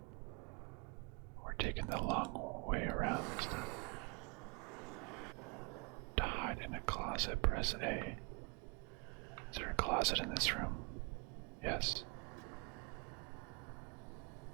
taking the long way around this time. To hide in a closet, press A. Is there a closet in this room? Yes.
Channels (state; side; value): quieter; left; 31.6 dB